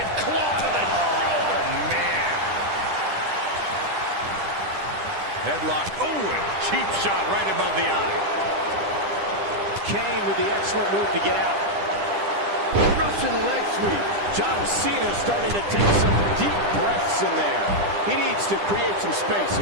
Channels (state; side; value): late; left; 10 ms